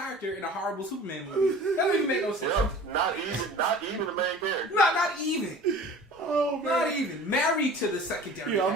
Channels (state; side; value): normal; both; correlation 0.43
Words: in a horrible Superman movie. That doesn't even make no sense. Yep, not even the main character. No, not even. Oh man. Not even. Married to the secondary. I'm